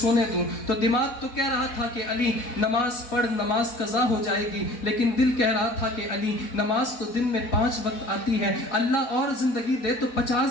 دوں. تو دماغ تو کہہ رہا تھا کہ علی نماز پڑھ نماز قضا ہو جائے گی لیکن دل کہہ رہا تھا کہ علی نماز تو دن میں 5 وقت آتی ہے اللہ اور زندگی دے تو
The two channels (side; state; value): right; late; 4.1 ms